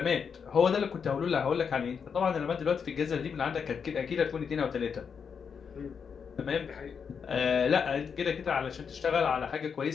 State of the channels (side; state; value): right; quieter; 6.5 dB